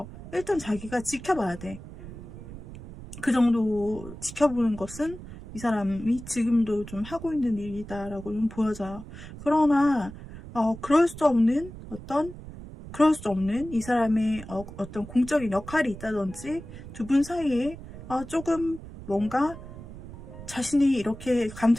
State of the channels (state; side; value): noise; right; rumble, 14 dB below the sound